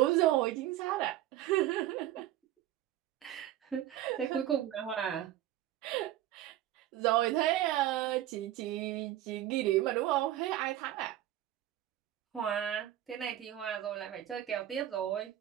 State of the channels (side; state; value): left; quieter; 13.3 dB